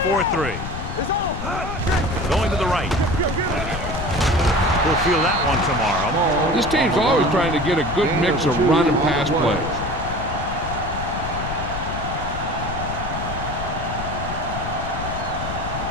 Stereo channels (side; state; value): left; noise; rumble, 6 dB below the sound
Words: It's on. Going to the right. We'll feel that one tomorrow. This team's always trying to get a good mix of run and pass plays.